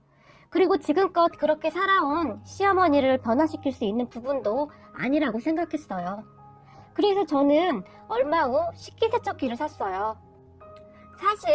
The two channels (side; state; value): both; identical; correlation 1.00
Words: 그리고 지금껏 그렇게 살아온 시어머니를 변화시킬 수 있는 부분도 아니라고 생각했어요. 그래서 저는 얼마 후 식기세척기를 샀어요.